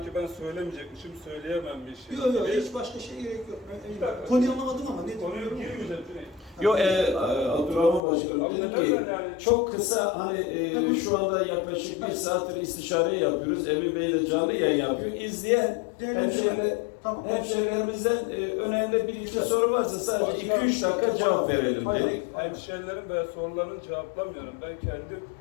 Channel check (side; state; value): right; drops out; at 8.0 s